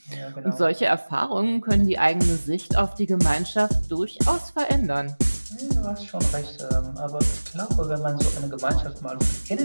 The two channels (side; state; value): both; inverted; correlation -1.00